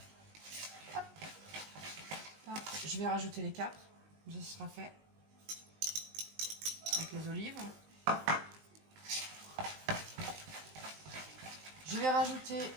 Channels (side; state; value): left; late; 19 ms